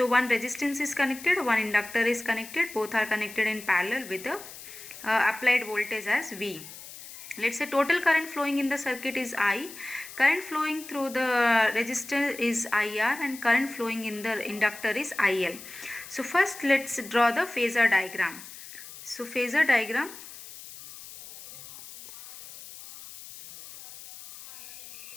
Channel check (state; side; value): noise; left; hiss, 15 dB below the sound